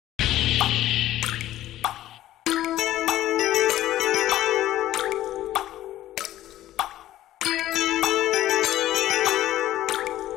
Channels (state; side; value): quieter; right; 14.0 dB